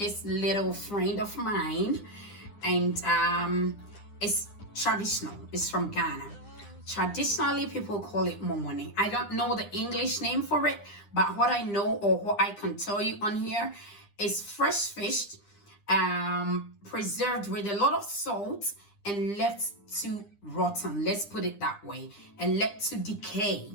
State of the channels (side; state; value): right; late; 9.9 ms